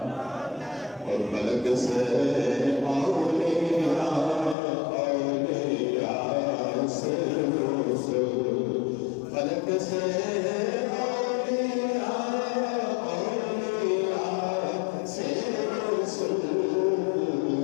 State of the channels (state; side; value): drops out; right; at 4.5 s